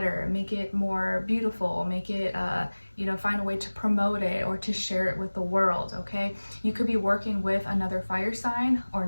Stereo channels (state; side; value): inverted; both; correlation -1.00